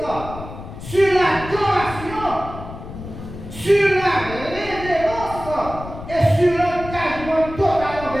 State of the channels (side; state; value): left; noise; rumble, 12 dB below the sound